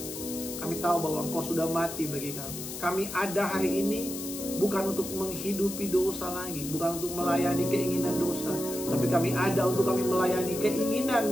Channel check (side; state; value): left; noise; hiss, 8 dB below the sound